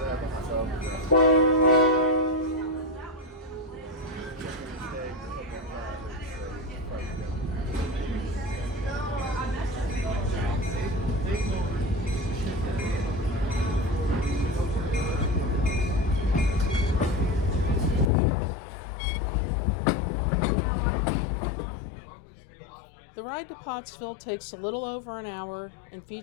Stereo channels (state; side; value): drops out; right; at 18.1 s